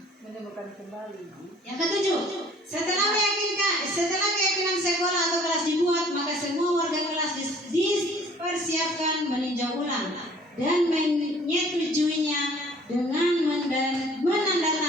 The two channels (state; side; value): normal; both; correlation 0.54